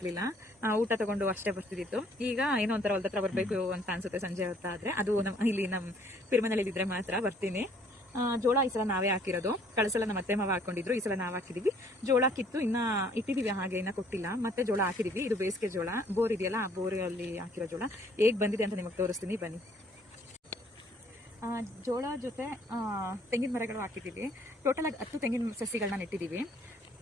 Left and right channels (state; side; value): normal; both; correlation 0.61